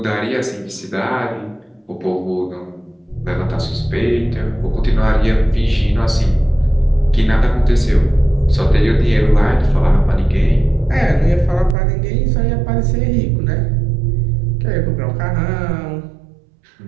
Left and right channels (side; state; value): left; drops out; at 11.8 s